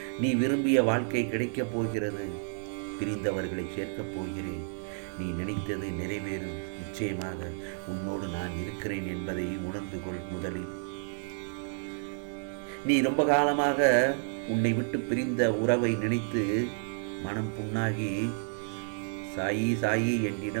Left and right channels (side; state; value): left; silent; digital silence